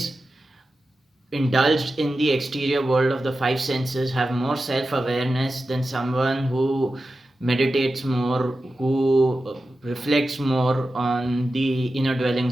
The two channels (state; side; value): normal; both; correlation 0.92